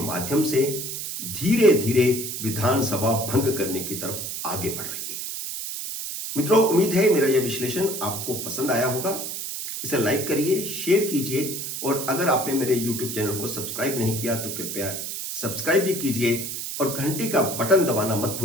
से धीरे धीरे विधानसभा भंग करने की तरफ आगे बढ़ रही है। मित्रों, उम्मीद है मेरा यह विश्लेषण आपको पसंद आया होगा। इसे लाइक करिए, शेयर कीजिए और अगर आपने मेरे YouTube चैनल को सब्सक्राइब नहीं किया तो कृपया सब्सक्राइब भी कीजिए और घंटी का बटन दबाना मत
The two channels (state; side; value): noise; right; hiss, 5 dB below the sound